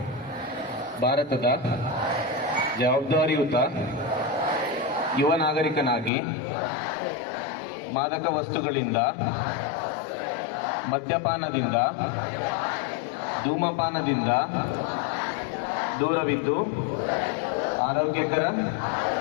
ಭಾರತದ ಜವಾಬ್ದಾರಿಯುತ ಯುವ ನಾಗರಿಕನಾಗಿ ಮಾದಕ ವಸ್ತುಗಳಿಂದ, ಮದ್ಯಪಾನದಿಂದ, ಧೂಮಪಾನದಿಂದ ದೂರವಿದ್ದು ಆರೋಗ್ಯಕರ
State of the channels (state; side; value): drops out; right; at 6.1 s